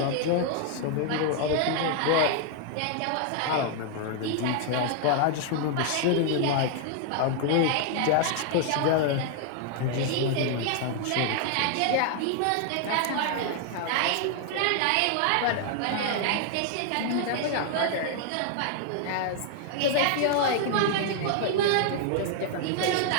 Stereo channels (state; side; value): different; both; correlation 0.00